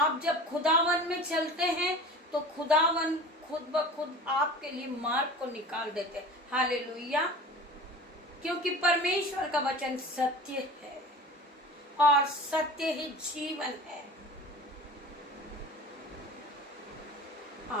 जब खुदावन में चलते हैं तो खुदावन खुद ब खुद आपके लिए मार्ग को निकाल देते हैं। हालेलुया। क्योंकि परमेश्वर का वचन सत्य है और सत्य ही जीवन है।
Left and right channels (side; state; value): both; normal; correlation 0.37